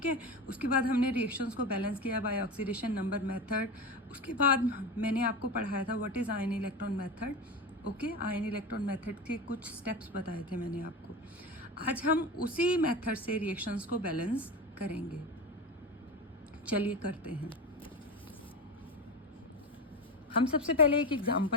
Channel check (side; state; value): both; normal; correlation 0.23